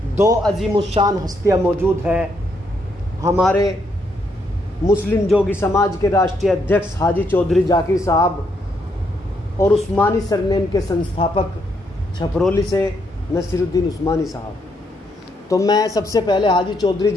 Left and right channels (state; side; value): normal; both; correlation 0.76